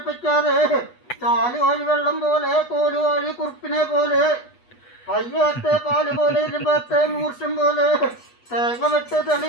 ചാല് വഴി വെള്ളം പോലെ, കോല് വഴി കുറുപ്പിനെ പോലെ, പയ്യത്തെ പാല് പോലെ, ഇരുപത്തെ മൂർഷം പോലെ, തേങ്ങ വെട്ട് തെളി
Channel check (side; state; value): right; late; 8.2 ms